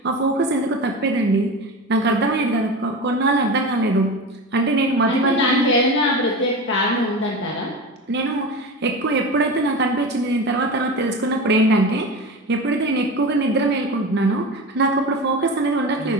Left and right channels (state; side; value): normal; both; correlation 0.27